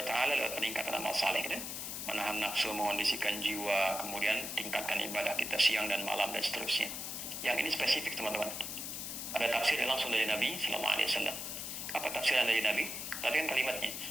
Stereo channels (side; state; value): left; noise; hiss, 5 dB below the sound